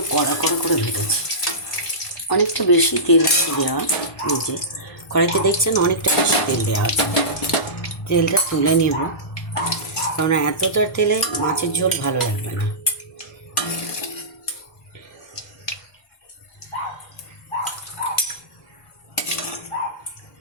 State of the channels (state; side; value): late; right; 1.1 ms